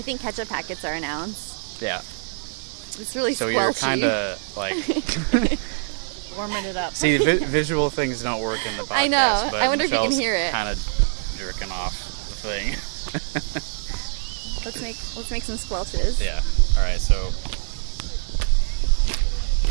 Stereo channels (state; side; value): silent; left; 56 dB below the other